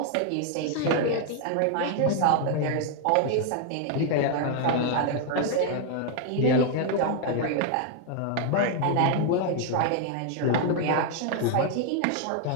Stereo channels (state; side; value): different; both; correlation 0.00